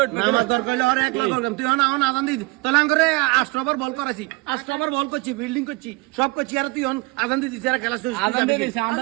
উঠ নামাজ দর কইলে আর এক লাখ তুই হন আদান দিয়ে তো লাঙ্গরে 8 ওভার বল করাছি 8 ওভার বল করছি ফিল্ডিং করছি সব করছি আর তুই হন আদান দিয়ে দিছে আর খেলা শেষ আদান দিয়ে দিছে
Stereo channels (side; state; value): left; quieter; 25.1 dB